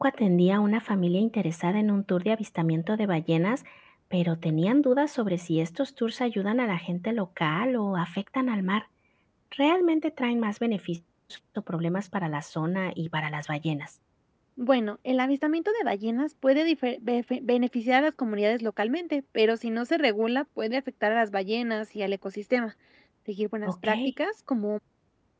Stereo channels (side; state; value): both; identical; correlation 1.00